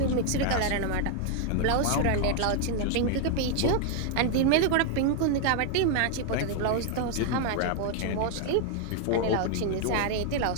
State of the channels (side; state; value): both; different; correlation 0.00